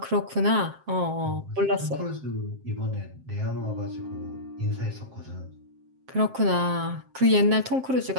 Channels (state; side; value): late; left; 7.6 ms